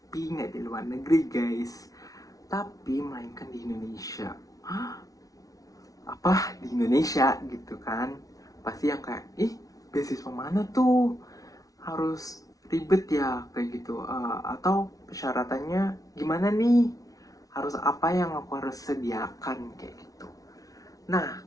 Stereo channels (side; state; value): right; late; 0.18 ms